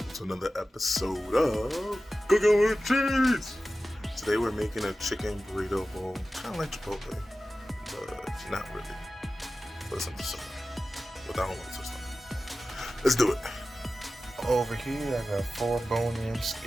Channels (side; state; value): both; normal; correlation 0.95